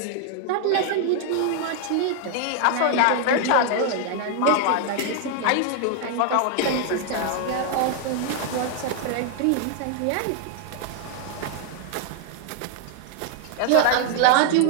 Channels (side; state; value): both; different; correlation 0.00